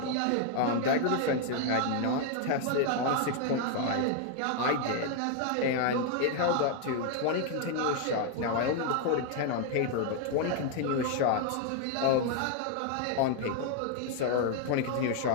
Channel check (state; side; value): different; both; correlation 0.00